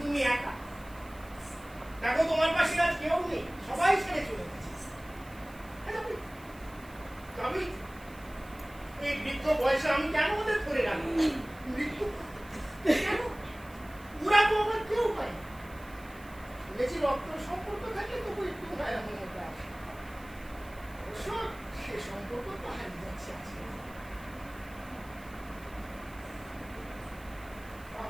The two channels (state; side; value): noise; right; hiss, 23 dB below the sound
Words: তুমি একা, দেখো তোমার পাশে আজ কেউ নেই, সবাই ছেড়ে চলে গেছে।